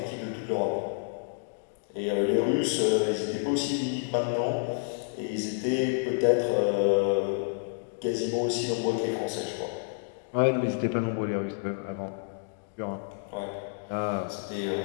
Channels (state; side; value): silent; right; digital silence